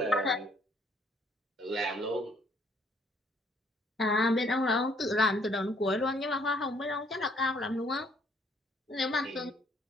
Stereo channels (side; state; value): both; normal; correlation 0.64